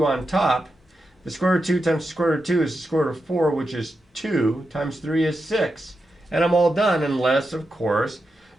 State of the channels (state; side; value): normal; both; correlation 0.88